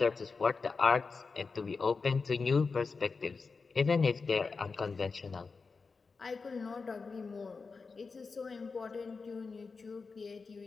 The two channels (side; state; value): right; quieter; 4.6 dB